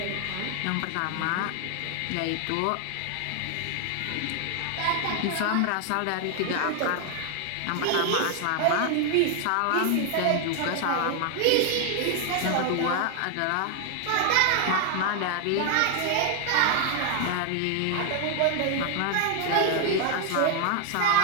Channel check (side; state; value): both; different; correlation 0.00